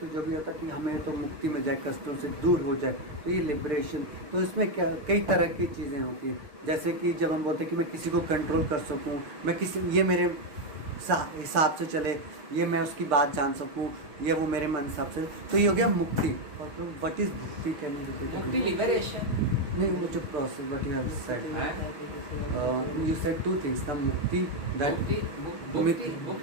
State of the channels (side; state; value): left; late; 6.7 ms